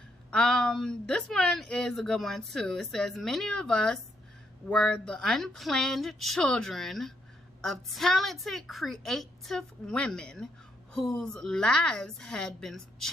This one is a good one too. It says, many of us were the unplanned children of talented, creative women whose lives had been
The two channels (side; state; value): both; normal; correlation 0.76